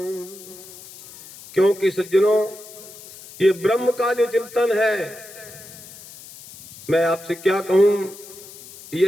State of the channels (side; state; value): left; noise; hiss, 18 dB below the sound